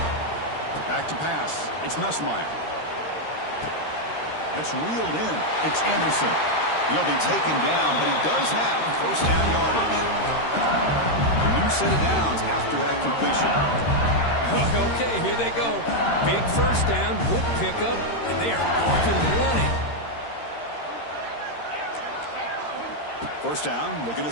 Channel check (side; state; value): right; late; 13 ms